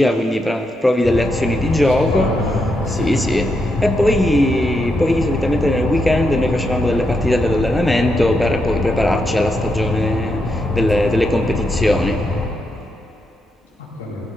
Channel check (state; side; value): normal; both; correlation 0.82